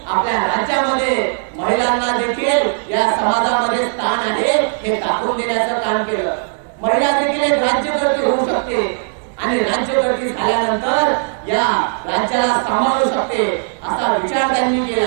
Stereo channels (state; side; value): silent; left; digital silence